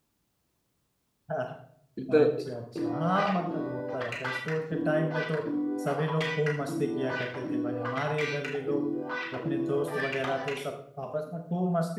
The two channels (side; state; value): both; identical; correlation 1.00